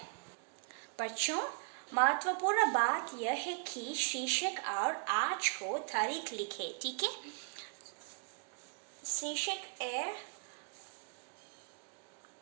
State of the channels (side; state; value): left; quieter; 38.6 dB